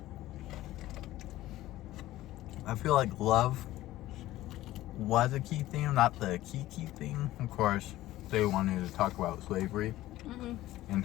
feel like love was a key theme, not the key theme. Of course, they wanted to talk about slavery and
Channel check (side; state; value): right; quieter; 15.7 dB